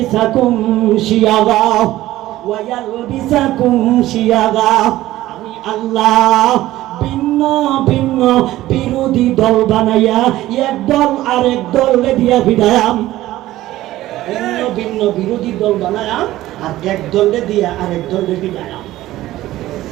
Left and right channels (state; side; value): quieter; left; 15.6 dB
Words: শিয়াগা, আমি আল্লাহ ভিন্ন ভিন্ন বিরোধী দল বানাইয়া এক দল আরেক দলে দিয়া ভিড়ায়াম। ভিন্ন ভিন্ন বিরোধী দল বানায়াম আর এক দলে দিয়া আরেক দলে ভিড়ায়াম।